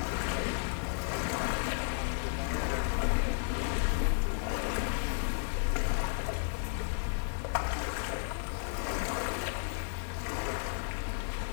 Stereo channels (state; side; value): silent; right; digital silence